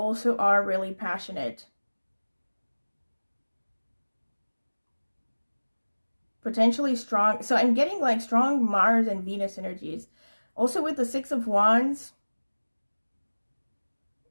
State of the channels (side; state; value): both; inverted; correlation -1.00